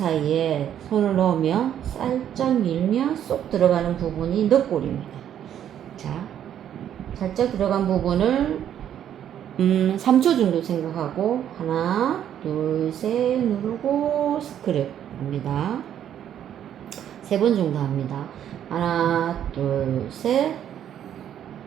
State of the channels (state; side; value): quieter; left; 10.1 dB